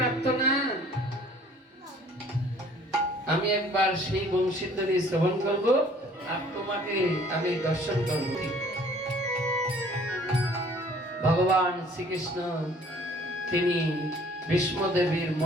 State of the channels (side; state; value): both; normal; correlation 0.55